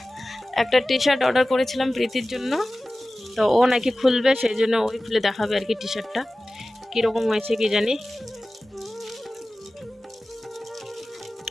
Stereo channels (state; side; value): normal; both; correlation 0.96